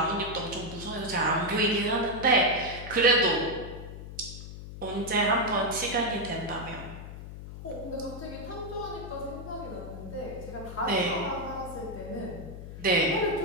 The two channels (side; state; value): left; noise; hum, 11 dB below the sound